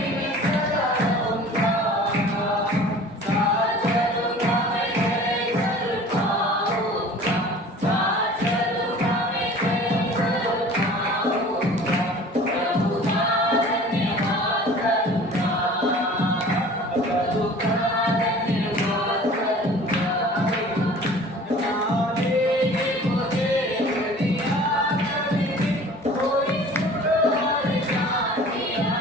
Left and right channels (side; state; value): both; normal; correlation 0.45